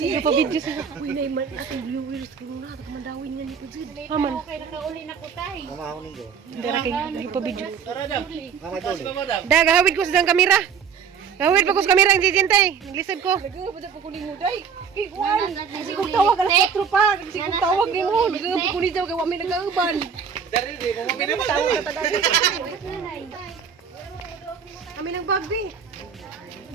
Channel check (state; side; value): quieter; left; 6.9 dB